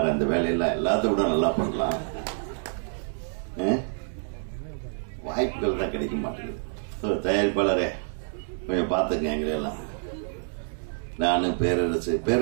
அந்த வேலையெல்லாம் எல்லாத்த விட நல்லா பண்ணலாம். வாய்ப்புகள் தான் கிடைக்க மாட்டேங்குது. தயாரிப்பாளரே கொஞ்சம் பாத்துங்க எங்களெல்லாம். நானு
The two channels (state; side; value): silent; left; 60 dB below the other